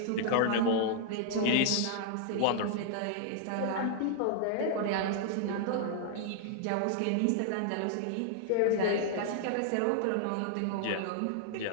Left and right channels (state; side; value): different; both; correlation -0.01